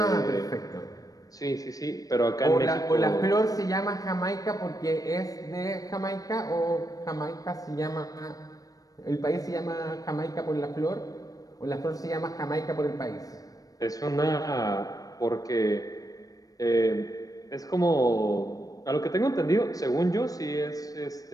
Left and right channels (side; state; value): right; late; 0.18 ms